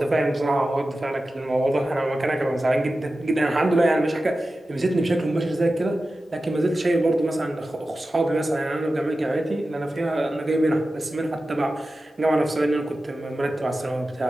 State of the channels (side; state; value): both; normal; correlation 0.94